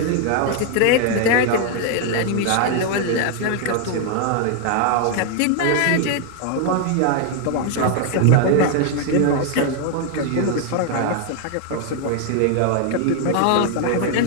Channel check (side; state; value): both; different; correlation 0.00